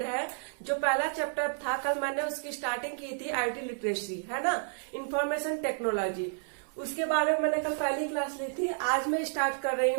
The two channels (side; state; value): left; silent; 57 dB below the other